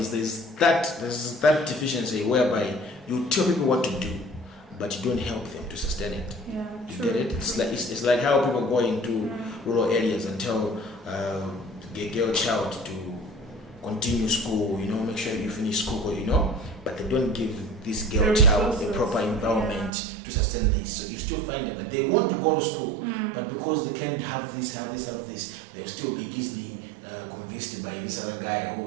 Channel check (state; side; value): drops out; left; at 19.9 s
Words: there's that deficiency whereby you tell people what to do, but you don't help them to sustain it. Yeah, you true. get it? It's like how people go into rural areas and tell the girl child to continue school, make sure you finish school, but they don't give this girl child the proper environment to sustain this. So you still find them that they want to go to school, but because they can't have this, they'll still be easily convinced by this other guy who